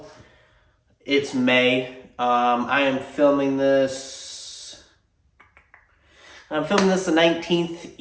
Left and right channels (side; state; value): both; identical; correlation 1.00